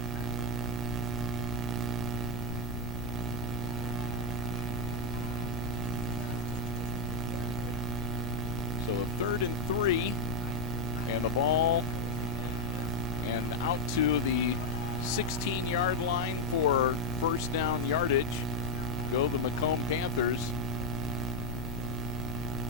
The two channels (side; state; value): left; noise; rumble, 7 dB below the sound